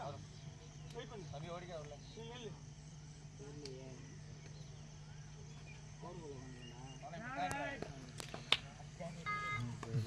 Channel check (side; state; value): both; identical; correlation 1.00